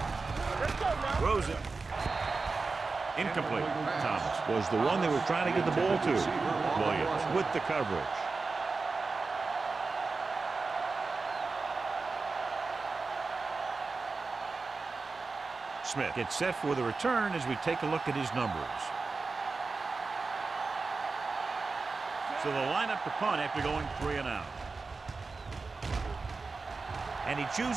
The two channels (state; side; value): quieter; left; 4.1 dB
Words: Let's go now. Throws it. Incomplete. Thomas was the one they were trying to get the ball to. Williams with the coverage. Smith gets set for the return as we take a look at his numbers. So they'll line up to punt after going 3 and out. And he